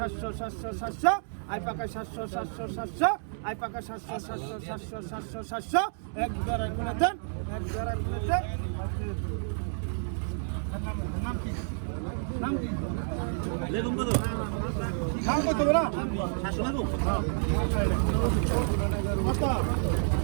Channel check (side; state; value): left; silent; 58 dB below the other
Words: 700 700 আই পাকা 700 700 700 আই পাকা 700 700 700 700 700 এক ধরে করে দেন এক ধরে করে দেন নাম কি নাম কি বেগুন কত নাম কত বলা 700 লাগো কত